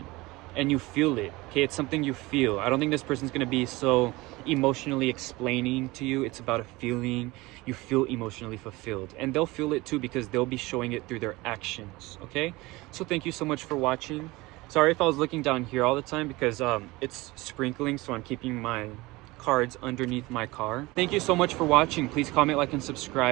and you feel it, okay? It's something you feel. I don't think this person's gonna be so emotionally explaining to you. It's about a feeling. You feel emotionally fulfilled, and they'll feel it too, because they'll be showing it through their actions, okay? So thank you so much for watching. Sorry if I was looking down here all the time because it's sprinkling, so I'm keeping my cards underneath my car. Thank you so much for watching. Please comment, like, and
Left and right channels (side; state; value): left; quieter; 21.5 dB